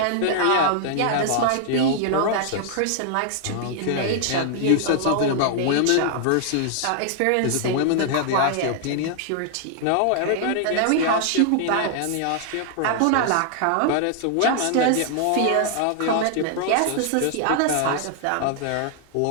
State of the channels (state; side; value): different; both; correlation 0.00